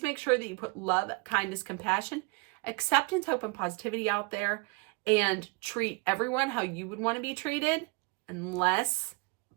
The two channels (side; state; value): left; quieter; 29.3 dB